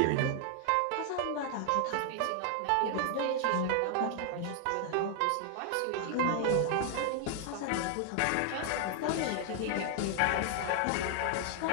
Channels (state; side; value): different; both; correlation 0.00